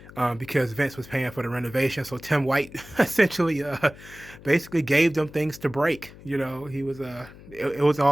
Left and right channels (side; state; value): left; noise; hum, 19 dB below the sound